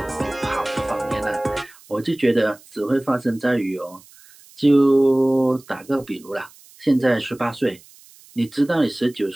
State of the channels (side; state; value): right; noise; hiss, 25 dB below the sound